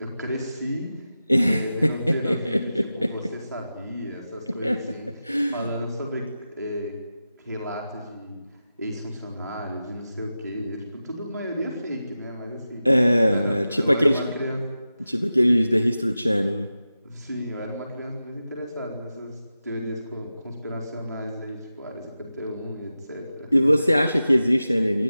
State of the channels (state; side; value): inverted; both; correlation -0.93